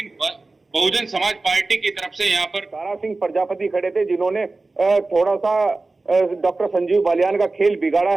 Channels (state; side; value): quieter; left; 3.4 dB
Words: बहुजन समाज पार्टी की तरफ से यहाँ पर दारा सिंह प्रजापति खड़े थे जिन्होंने थोड़ा सा डॉक्टर संजीव बालियान का खेल बिगाड़ा